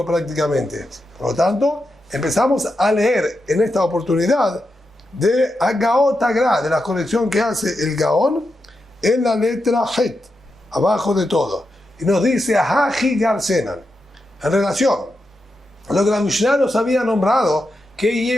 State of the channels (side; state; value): both; normal; correlation 0.87